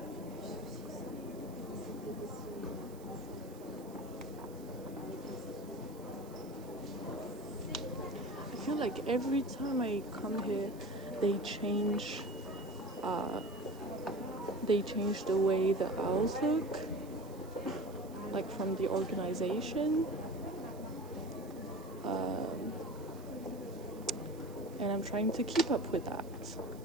I feel like every time I come here, they change the way the owls look, like from the organization. And I'm trying to keep up with that,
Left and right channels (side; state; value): right; noise; hiss, 22 dB below the sound